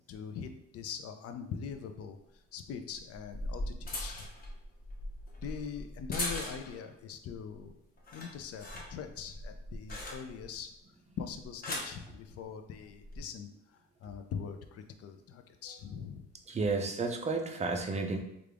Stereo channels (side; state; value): both; normal; correlation 0.36